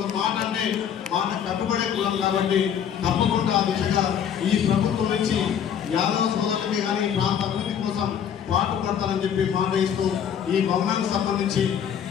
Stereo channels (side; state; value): right; quieter; 8.6 dB